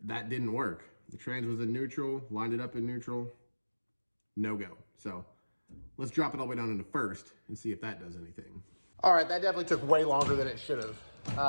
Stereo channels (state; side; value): inverted; both; correlation -1.00